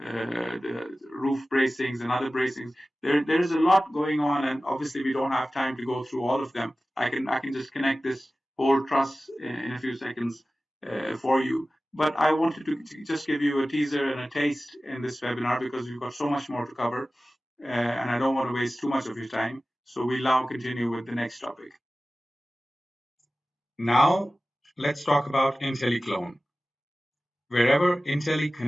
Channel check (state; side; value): normal; both; correlation 0.96